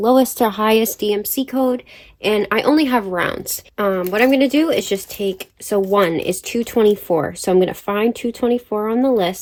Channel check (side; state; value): both; identical; correlation 1.00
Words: lowest to highest DMC code, and I only have rounds. What I'm gonna do is just take, so 1 is 224, so I'm gonna find 224 on the